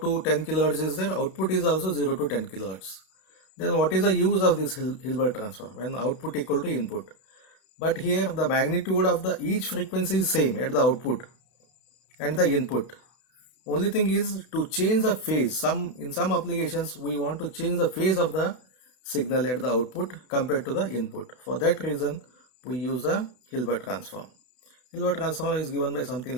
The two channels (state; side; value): late; right; 32 ms